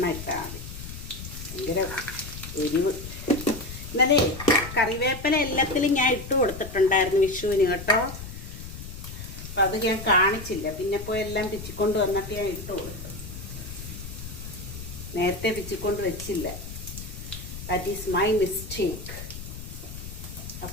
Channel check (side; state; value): left; noise; rumble, 10 dB below the sound